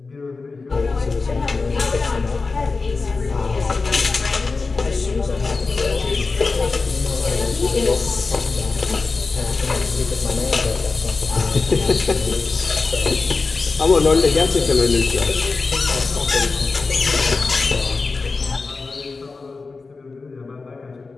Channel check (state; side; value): quieter; right; 4.1 dB